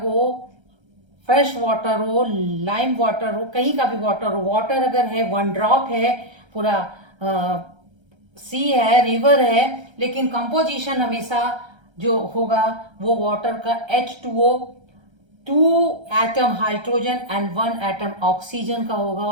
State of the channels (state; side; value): late; left; 1.3 ms